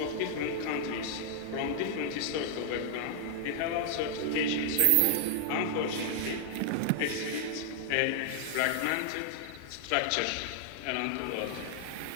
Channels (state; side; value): different; both; correlation 0.00